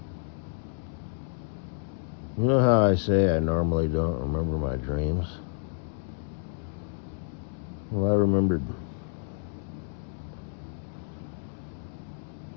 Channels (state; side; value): silent; right; digital silence